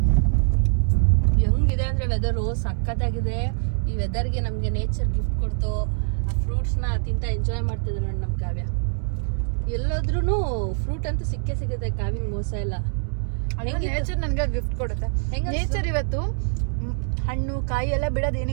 ಹೆಂಗಿದೆ ಅಂದರೆ ವೆದರು ಸಖತ್ತಾಗಿದೆ. ಈ ವೆದರ್ಗೆ ನಮಗೆ ನೇಚರ್ ಗಿಫ್ಟ್ ಕೊಡ್ತು. ಆ ಫ್ರೂಟ್ಸ್ನ ತಿಂತ ಎಂಜಾಯ್ ಮಾಡ್ತಿದ್ರು ನೋಡಿ ನಮ್ಮ ಕಾವ್ಯ. ಎಲ್ಲೋದ್ರೂ ಫ್ರೂಟ್ ಅಂತೂ ಸಿಗುತ್ತೆ. ಕಾವಿನ ಮೋಸ ಇಲ್ಲ. ನೇಚರ್ ನನ್ಗೆ ಗಿಫ್ಟ್ ಕೊಡುತ್ತೆ. ನೇಚರ್ ಇವತ್ತು ಹಣ್ಣು ಕಾಯಿ ಎಲ್ಲ ಬಿಡೋದು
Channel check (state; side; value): silent; left; digital silence